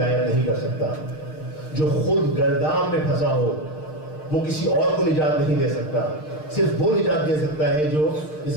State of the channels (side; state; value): right; late; 6.5 ms